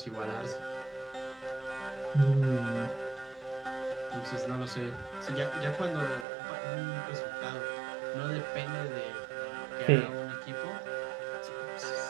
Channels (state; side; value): drops out; left; at 6.2 s